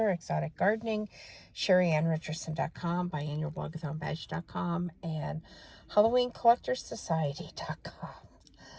Exotic Gardening, SheriRicherson.com, biannualblog.com, and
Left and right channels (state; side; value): identical; both; correlation 1.00